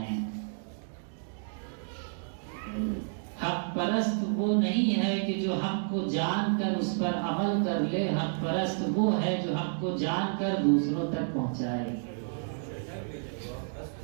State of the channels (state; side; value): silent; left; digital silence